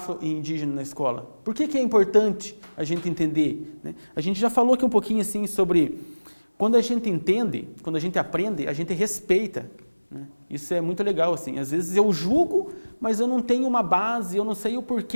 na escola? Por que é importante a gente entender, né? A gente já falou aqui um pouquinho assim sobre quando a gente entende, quando a gente aprende, a gente respeita, né? Isso é muito legal, assim. Às vezes eu julgo, mas eu não tenho uma base, eu não sei o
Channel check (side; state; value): both; inverted; correlation -1.00